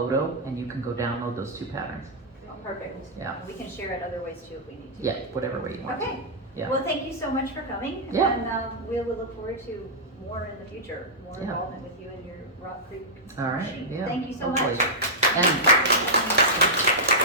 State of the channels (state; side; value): normal; both; correlation -0.10